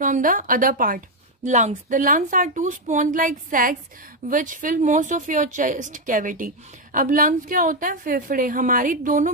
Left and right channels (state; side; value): normal; both; correlation 0.04